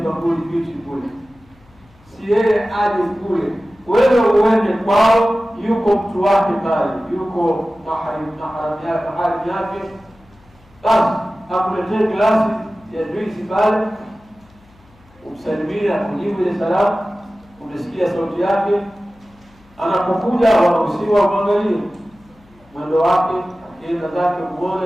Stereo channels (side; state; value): left; noise; hum, 29 dB below the sound